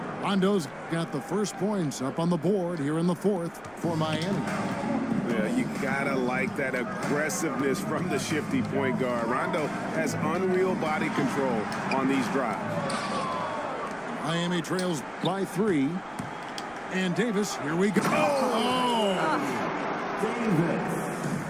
Rondo's got the first points up on the board here in the 4th for Miami. Yeah, you gotta like that aggressiveness from the shifty point guard. Rondo has unreal body control on these drives. Miami trails by 3. And Davis, here we go.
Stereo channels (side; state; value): left; noise; rumble, 27 dB below the sound